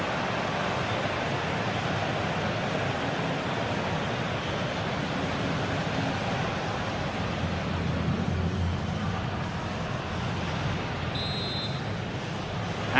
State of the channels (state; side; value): identical; both; correlation 1.00